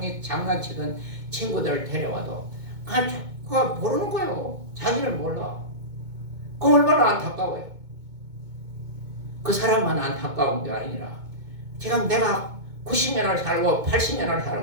친구들을 데려와도 그거 모르는 거예요. 자기를 몰라. 그 얼마나 안타까워요. 그 사람만 안타까운 게 아니라 지금 내가 90년을 살고 80년을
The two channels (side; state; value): left; late; 2.2 ms